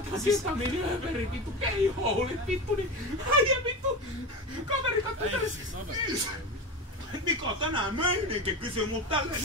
ketamiiniöverin vittu keihoulit vittu, niin äijä vittu. Kaveri kattoi tällaisen. Niko tänään meininki kysyy mut tälleen,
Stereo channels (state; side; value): normal; both; correlation 0.23